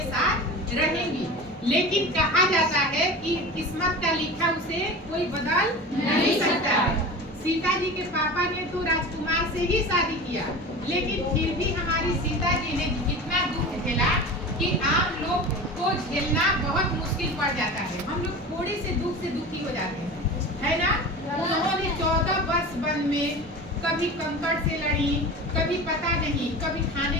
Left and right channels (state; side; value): normal; both; correlation 0.33